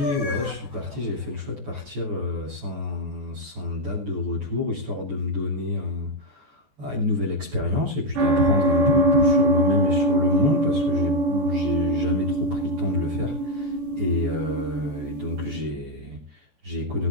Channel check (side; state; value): left; late; 14 ms